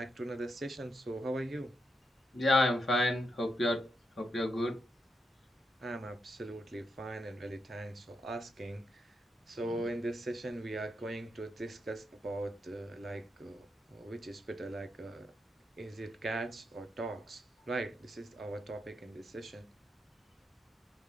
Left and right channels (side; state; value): both; normal; correlation 0.83